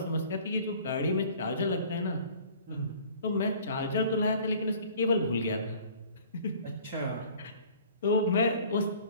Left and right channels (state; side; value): inverted; both; correlation -0.50